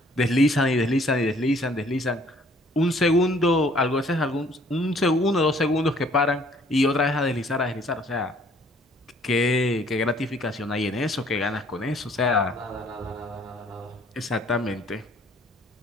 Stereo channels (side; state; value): both; normal; correlation 0.59